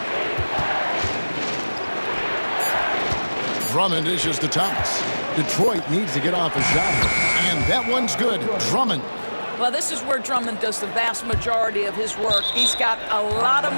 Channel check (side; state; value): both; inverted; correlation -1.00